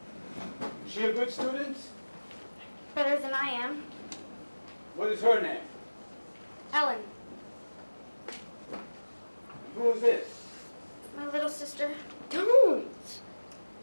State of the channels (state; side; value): inverted; both; correlation -1.00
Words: Is she a good student? Better than I am. What is her name? Ellen. Who is this? My little sister. Don't.